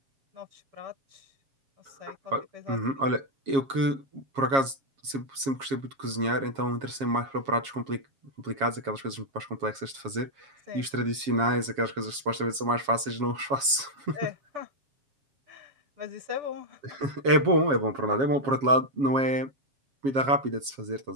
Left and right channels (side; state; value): left; late; 7.3 ms